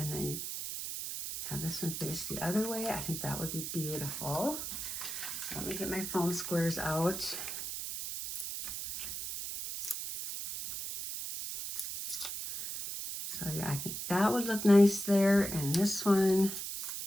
then have this one face the other way. I think that would be beautiful. So let me get my foam squares out. So yeah, I think that would look nice there. And this one,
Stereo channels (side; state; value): right; noise; hiss, 5 dB below the sound